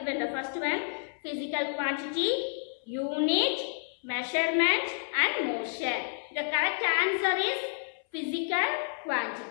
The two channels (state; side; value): silent; right; 58 dB below the other